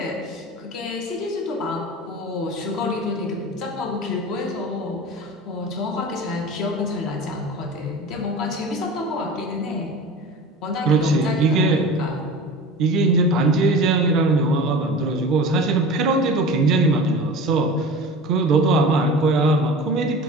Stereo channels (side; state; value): both; normal; correlation 0.35